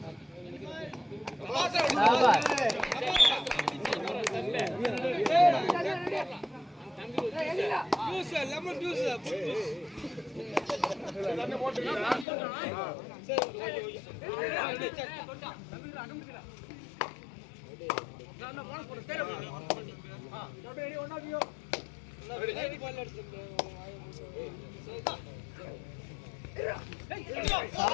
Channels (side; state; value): right; drops out; at 12.2 s